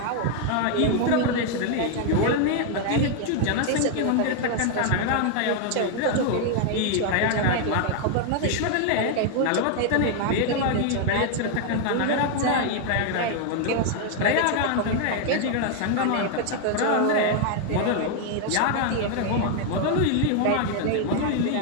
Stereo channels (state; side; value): different; both; correlation 0.00